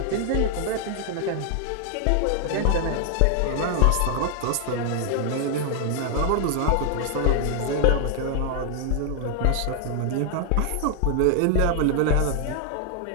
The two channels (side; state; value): both; different; correlation 0.00